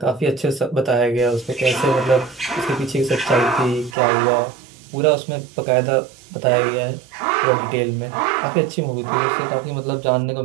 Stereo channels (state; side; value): drops out; left; at 4.0 s